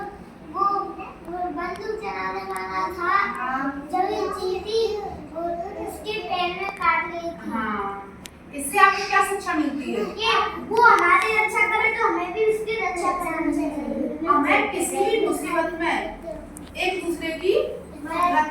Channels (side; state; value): both; identical; correlation 1.00